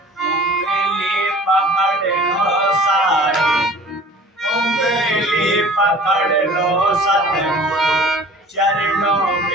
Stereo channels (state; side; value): normal; both; correlation 0.46